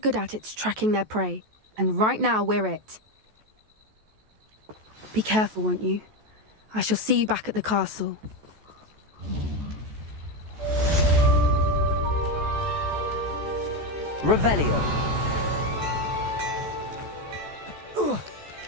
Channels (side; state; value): left; late; 14 ms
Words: at, it's tracking their prey. And right now, we're it. Be careful, won't you? I shall see you back at the castle. Revelio.